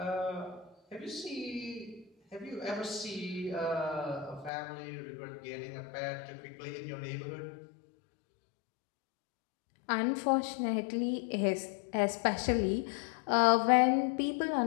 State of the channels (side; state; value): right; drops out; at 4.5 s